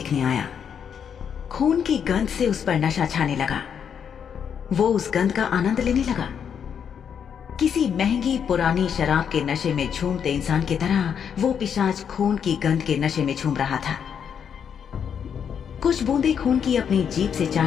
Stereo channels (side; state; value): right; quieter; 7.7 dB